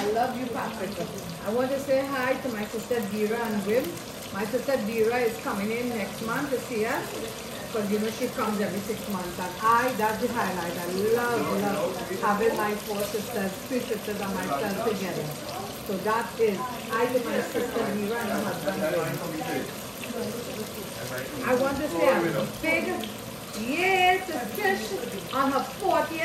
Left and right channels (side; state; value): both; identical; correlation 1.00